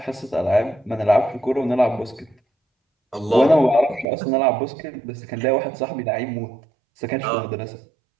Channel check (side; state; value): left; drops out; at 4.0 s